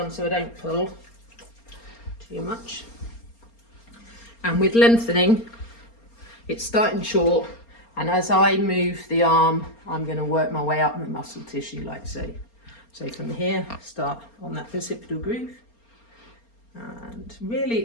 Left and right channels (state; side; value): late; right; 4.3 ms